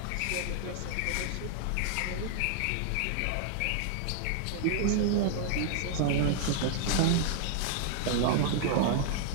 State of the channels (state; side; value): different; both; correlation 0.00